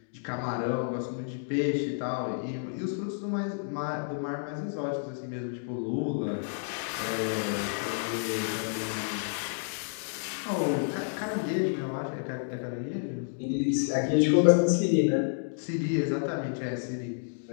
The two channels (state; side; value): silent; right; digital silence